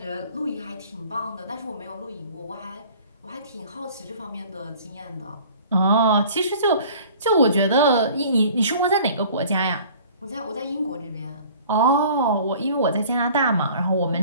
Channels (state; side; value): inverted; both; correlation -0.48